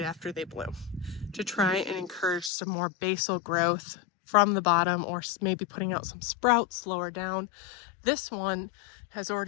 after they bloom to try and encourage some more basal growth from the bottom, or maybe putting out some sprouts lower down. This one has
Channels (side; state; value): right; drops out; at 2.5 s